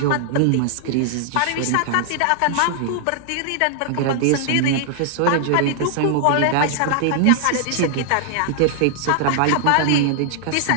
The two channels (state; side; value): different; both; correlation 0.00